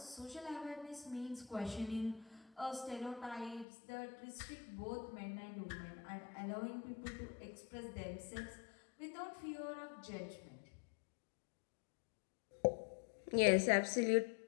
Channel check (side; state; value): right; drops out; at 3.7 s